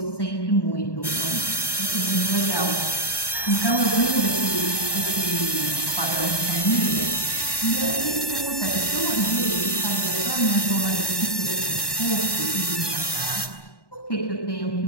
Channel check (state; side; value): late; right; 1.1 ms